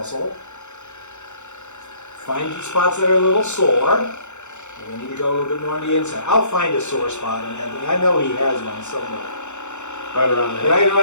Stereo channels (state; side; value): late; right; 0.83 ms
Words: Find the spots that are a little sore. And we need to go a little bit more on the inside. I'll find a sore spot on Anthony. I know he has one somewhere. Right around there. Right